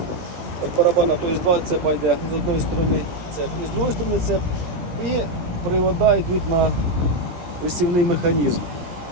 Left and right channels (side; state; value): left; late; 17 ms